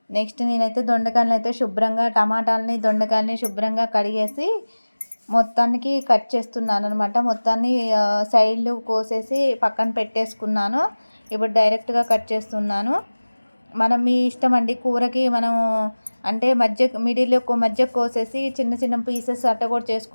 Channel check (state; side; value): inverted; both; correlation -1.00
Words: నెక్స్ట్ నేనైతే దొండకాయలను అయితే దొండకాయలని శుభ్రంగా కడిగేసి మొత్తానికి కట్ చేస్తున్నాను అనమాట. మొత్తాన్ని సైడ్లు కోసేసి పక్కన పెట్టేసుకున్నాను. ఇప్పుడు డైరెక్ట్గా కట్ చేస్తున్నాను. మనం మీ ఇష్టం అండి. కూరకి మనం అంటే మధ్య కోసేసి చిన్న చిన్న పీసెస్ అట్ట కూడా